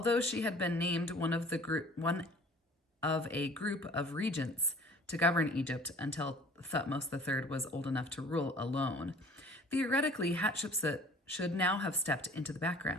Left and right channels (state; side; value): normal; both; correlation 0.49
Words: she had been named one of a group of regents to govern Egypt until Thutmose III was old enough to rule alone. Theoretically, Hatshepsut should now have stepped into the